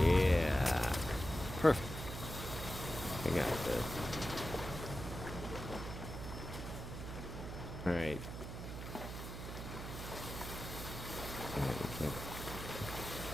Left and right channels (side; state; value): right; noise; hum, 7 dB below the sound